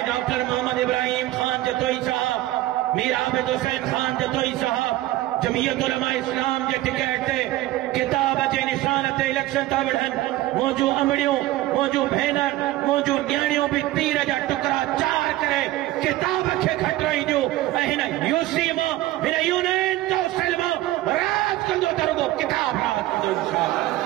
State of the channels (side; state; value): left; quieter; 16.2 dB